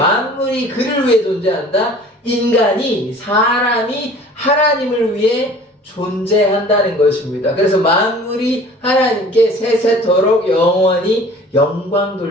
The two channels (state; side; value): normal; both; correlation 0.47